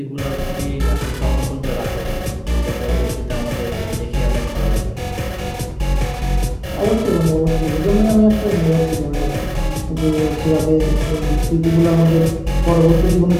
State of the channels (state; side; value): identical; both; correlation 1.00